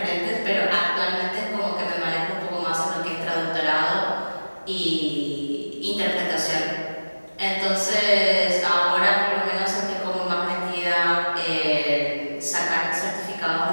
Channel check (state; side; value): inverted; both; correlation -1.00